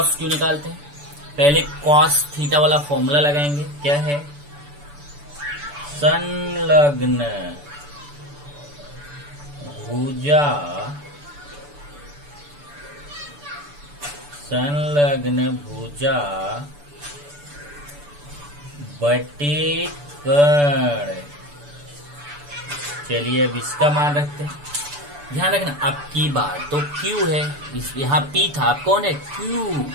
क्यू निकालते हैं। पहले कॉस थीटा वाला फॉर्मूला लगाएंगे। क्या है? संलग्न भुजा, संलग्न भुजा बटे कर्ण। चलिए अब इसका मान रखते हैं। ध्यान रखना, अब की बार तो क्यू है, यहाँ पी था, अब कौन है? क्यू।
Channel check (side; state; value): left; late; 6.9 ms